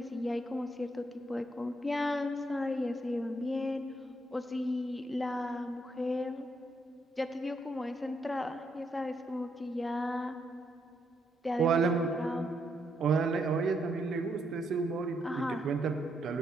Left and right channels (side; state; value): both; normal; correlation 0.77